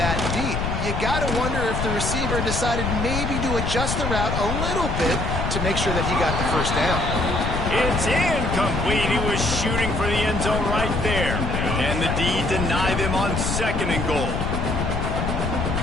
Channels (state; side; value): noise; left; rumble, 1 dB below the sound